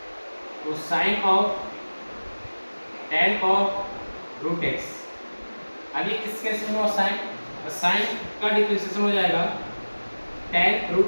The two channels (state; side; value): inverted; both; correlation -1.00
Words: तो sine of tan of root x, अब ये किसके रिस्पेक्ट में होगा? साइन, तो साइन का डिफरेंशिएशन हो जाएगा tan